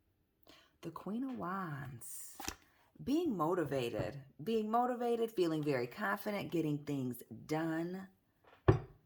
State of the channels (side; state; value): both; identical; correlation 1.00